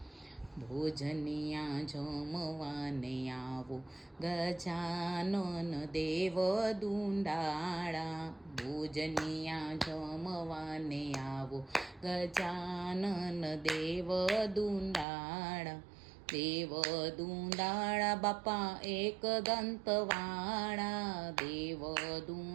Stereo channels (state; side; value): drops out; left; at 15.1 s